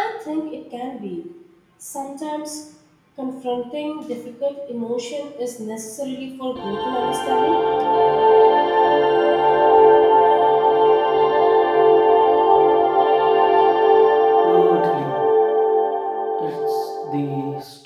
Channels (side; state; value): both; identical; correlation 1.00